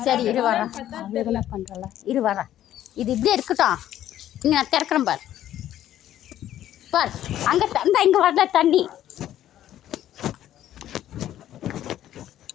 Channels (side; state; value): right; quieter; 12.2 dB